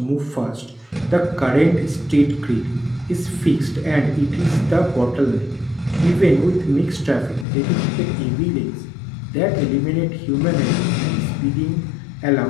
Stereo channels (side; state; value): right; drops out; at 7.5 s